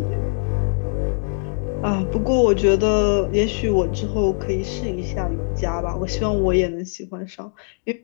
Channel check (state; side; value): silent; right; 64 dB below the other